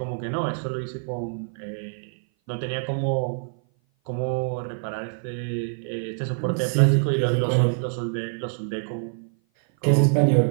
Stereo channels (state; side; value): silent; left; 57 dB below the other